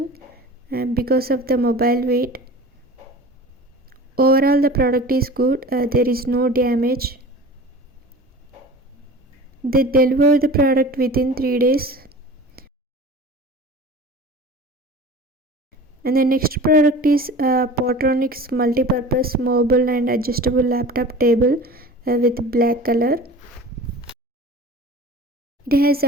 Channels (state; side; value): normal; both; correlation 0.38